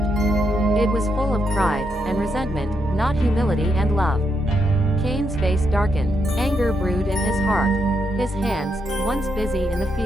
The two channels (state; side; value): normal; both; correlation 0.80